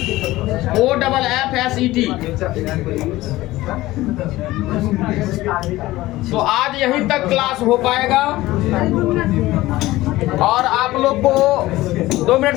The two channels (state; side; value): quieter; right; 17.6 dB